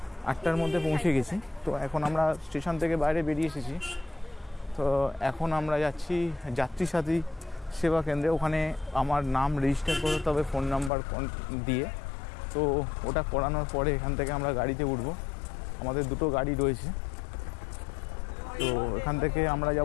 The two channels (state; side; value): drops out; right; at 10.9 s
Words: 8টার মধ্যে পৌঁছে গেছি। তো এখন আমরা স্টেশন থেকে বাইরে বেরিয়ে এসেছি। তো এখন আমরা যাচ্ছি যাত্রী সাথী সেবা কেন্দ্রে। ওখানে আমার নাম রেজিস্টার করতে হবে ফোন নাম্বার দিয়ে। তো ওটা করানোর পরে এখান থেকে আমরা গাড়িতে উঠব। আমাদের দুটো গাড়ি রয়েছে। তো এখান থেকে আমরা